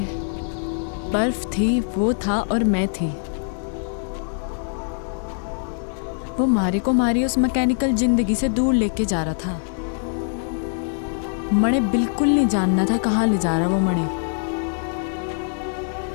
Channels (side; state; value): right; silent; digital silence